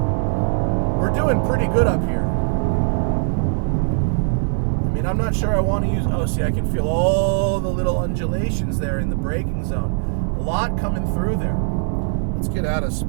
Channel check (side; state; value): left; silent; digital silence